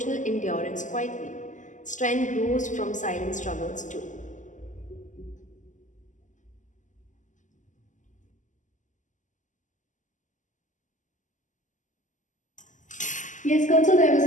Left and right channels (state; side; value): late; right; 0.37 ms